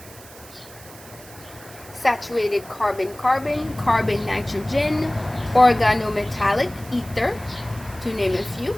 Saturated carbon-carbon, carbon-nitrogen, organometallic ether, to name a few.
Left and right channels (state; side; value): noise; right; hiss, 20 dB below the sound